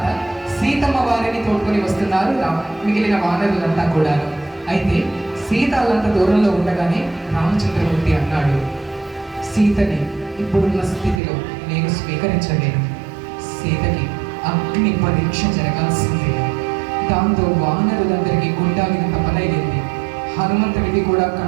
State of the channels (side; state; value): left; drops out; at 11.2 s